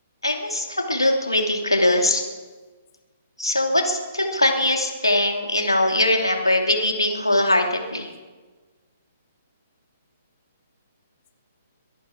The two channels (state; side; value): inverted; both; correlation -0.65